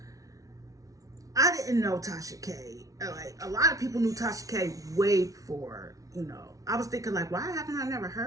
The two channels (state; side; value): late; left; 0.17 ms